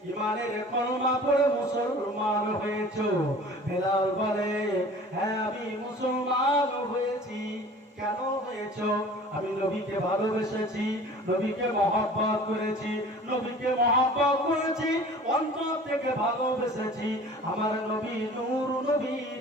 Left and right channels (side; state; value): both; normal; correlation 0.44